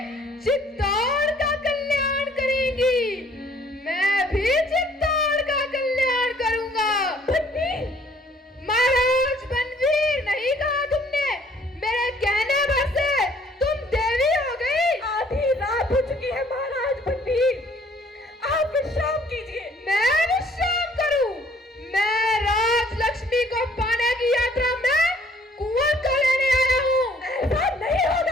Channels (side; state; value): both; normal; correlation 0.59